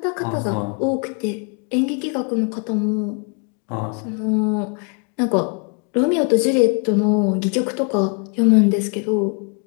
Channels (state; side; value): quieter; right; 38.3 dB